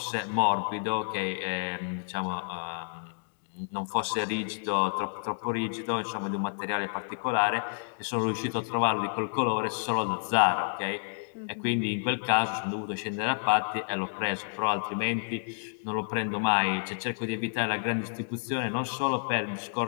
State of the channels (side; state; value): right; silent; digital silence